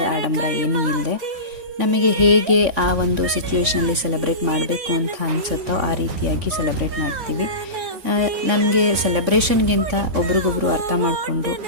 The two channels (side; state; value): left; late; 3.6 ms